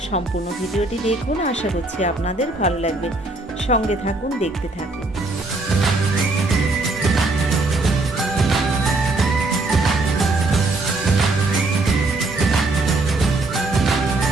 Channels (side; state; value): left; quieter; 3.0 dB